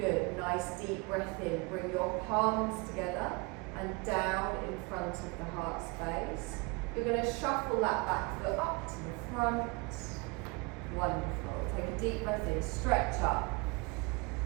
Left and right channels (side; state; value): left; quieter; 28.3 dB